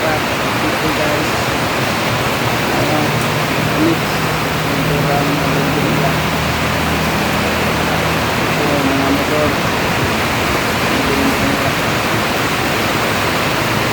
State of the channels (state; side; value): identical; both; correlation 1.00